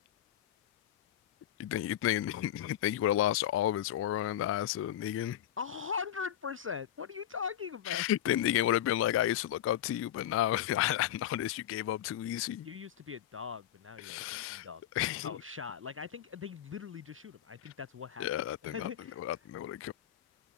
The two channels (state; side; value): quieter; right; 11.6 dB